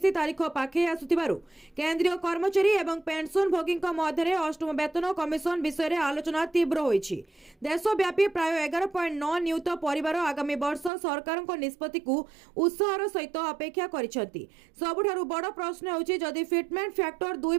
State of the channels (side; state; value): left; drops out; at 10.9 s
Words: तारीख पाखे आसुथिबारु केंद्रीय कर्मचारी एवं पेंशन भोगीक मध्यरे अष्टम वेतन कमिशन विषय रे आलोचना तीव्र होइछि। देशव्यापी प्राय 11.9 नियुत परिवार आगामी वर्ष सरकारक निष्पत्ति को उत्साहर सहित अपेक्षा करिसथि। सबुठारु बड़ प्रश्न होछि जदि फिटमेंट फैक्टर